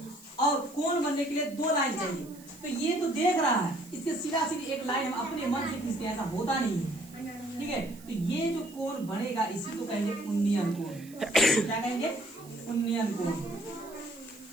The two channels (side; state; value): right; noise; hiss, 22 dB below the sound